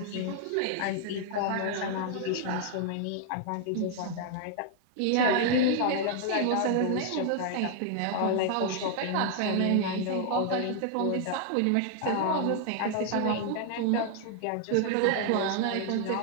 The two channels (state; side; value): different; both; correlation 0.00